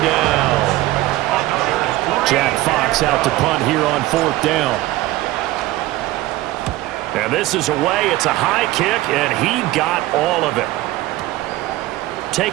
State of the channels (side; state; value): left; quieter; 17.1 dB